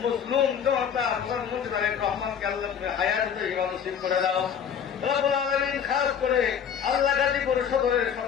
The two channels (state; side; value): quieter; right; 7.8 dB